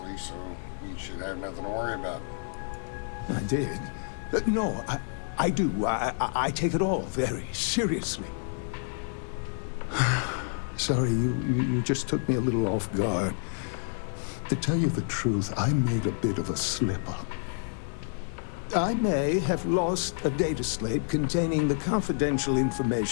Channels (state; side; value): silent; right; 59 dB below the other